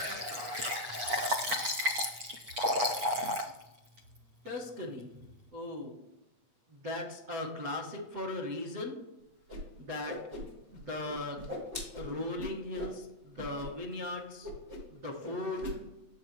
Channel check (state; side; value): late; left; 8.3 ms